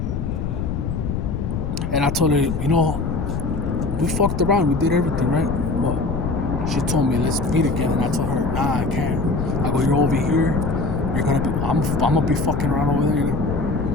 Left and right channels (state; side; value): noise; left; rumble, 3 dB below the sound